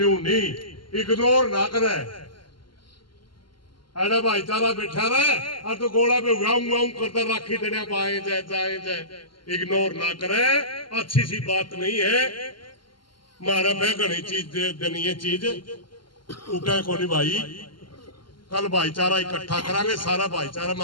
नहीं, इग्नोर ना करे। अरे भाईचारा बैठा रहे और तो गोला पे वाऊ करता राखी देने पाए जाए, इग्नोर ना करे, अच्छी सी बात नहीं है। मारा पे घनी चीज देनी है, चीज उठे को नहीं भाई। कल भाईचारा इकट्ठा करांगे, सारा भाईचारा में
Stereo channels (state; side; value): late; right; 0.72 ms